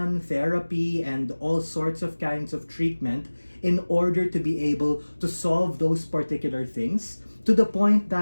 therapy, and all sorts of kinds of treatment in order to be able to solve those particular things, to the point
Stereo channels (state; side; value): inverted; both; correlation -1.00